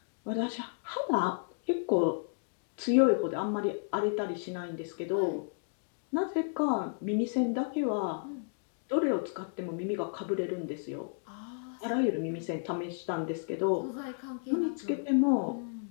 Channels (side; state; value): right; silent; digital silence